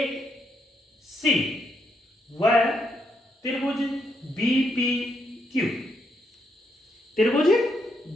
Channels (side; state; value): both; normal; correlation 0.78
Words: व त्रिभुज BPQ, त्रिभुज